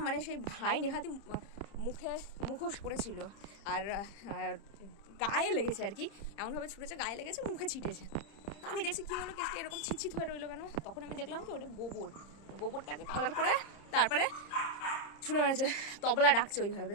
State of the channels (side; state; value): right; late; 30 ms